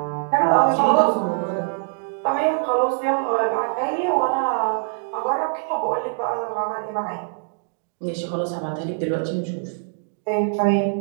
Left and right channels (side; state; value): left; silent; digital silence